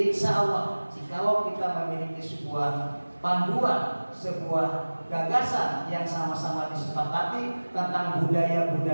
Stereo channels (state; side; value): inverted; both; correlation -1.00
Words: Allah, jikalau kita memiliki sebuah panduan, sebuah gagasan yang sama-sama disepakati tentang